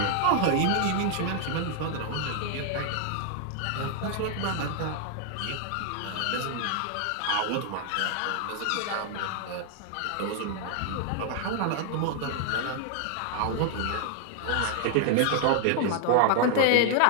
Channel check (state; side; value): different; both; correlation 0.00